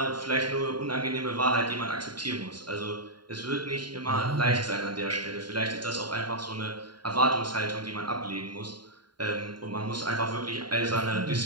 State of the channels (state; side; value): late; left; 0.72 ms